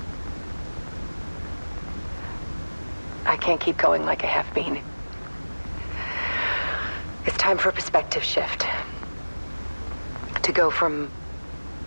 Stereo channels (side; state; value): both; inverted; correlation -1.00